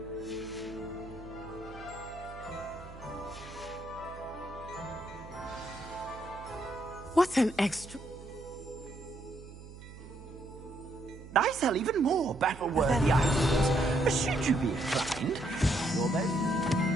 What an extra... I sell even more battle-worthy items. Should you be inclined, you're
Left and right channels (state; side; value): noise; right; hum, 15 dB below the sound